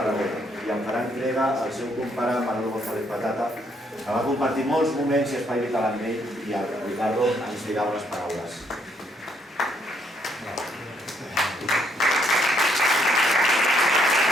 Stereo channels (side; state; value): both; normal; correlation 0.71